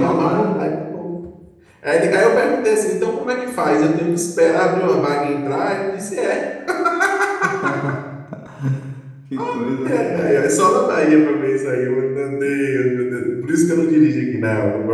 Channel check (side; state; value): both; identical; correlation 1.00